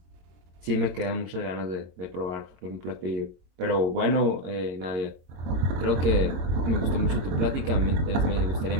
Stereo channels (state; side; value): late; left; 22 ms